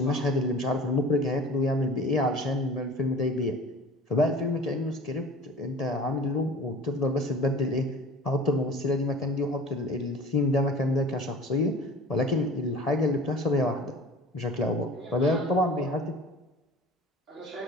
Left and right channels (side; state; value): both; normal; correlation 0.42